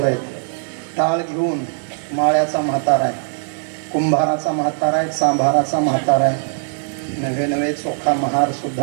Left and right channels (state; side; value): silent; left; 66 dB below the other